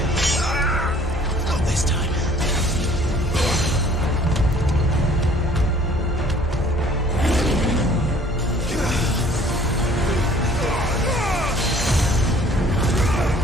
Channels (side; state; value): both; normal; correlation 0.55